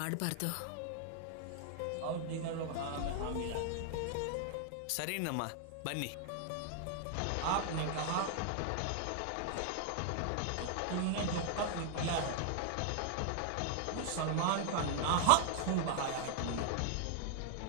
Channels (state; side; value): different; both; correlation 0.00